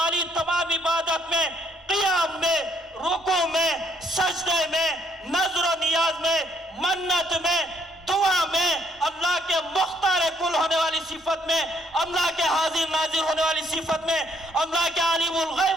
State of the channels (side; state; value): both; normal; correlation 0.68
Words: تمام عبادت میں، قیام میں، رکوع میں، سجدے میں، نظر و نیاز میں، منت میں، دعا میں، اللہ کے مختار کل ہونے والی صفت میں، اللہ کے حاضر ناظر ہونے والی صفت میں، اللہ کے عالم